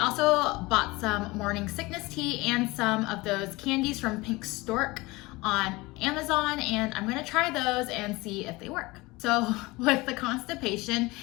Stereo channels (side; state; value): right; quieter; 22.3 dB